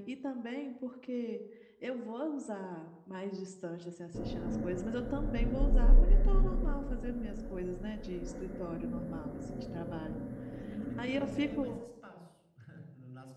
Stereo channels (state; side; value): identical; both; correlation 1.00